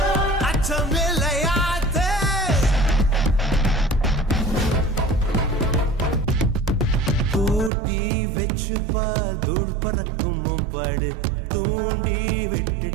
அச்சமில்லையாத்தே. கூட்டி வச்சுப்பா தூள் பறக்கும் பாடு, தூண்டி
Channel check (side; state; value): left; drops out; at 7.7 s